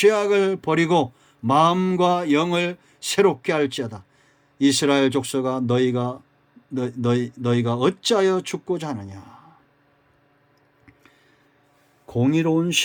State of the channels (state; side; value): identical; both; correlation 1.00